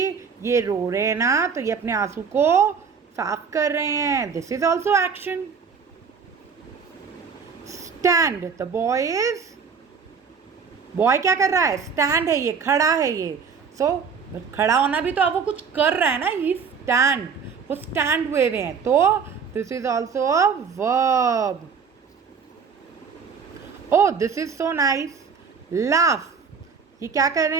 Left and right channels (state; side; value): quieter; left; 5.9 dB